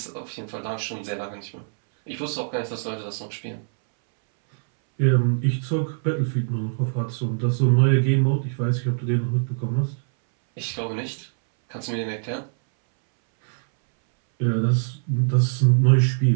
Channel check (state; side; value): silent; left; 63 dB below the other